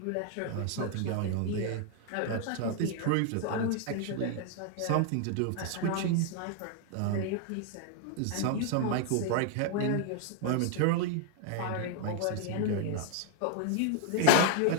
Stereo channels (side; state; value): both; different; correlation 0.00